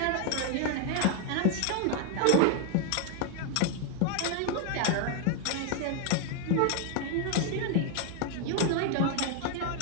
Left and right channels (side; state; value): both; different; correlation 0.01